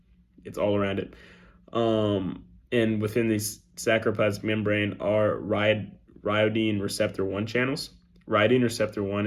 it's all around it. And within the sarcoplasmic membrane are rhyodine receptor 1 channels. Rhyodine receptor 1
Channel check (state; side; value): identical; both; correlation 1.00